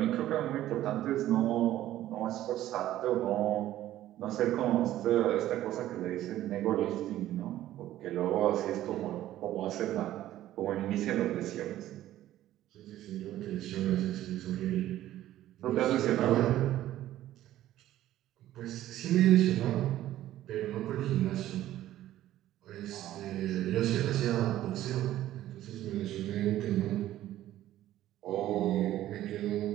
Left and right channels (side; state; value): left; quieter; 13.7 dB